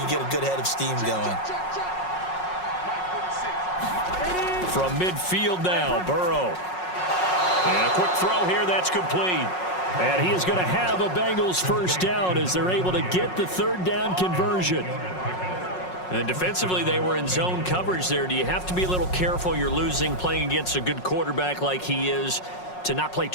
could get a good head of steam going. From midfield now, Burrow. And a quick throw here, that's complete. And he is going to have a Bengals 1st down as they're able to get the 3rd down conversion. And defensively, they were in zone coverage there. Do you have to be a little careful? You're losing, playing against a good quarterback like he is, to not play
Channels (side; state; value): right; late; 5.5 ms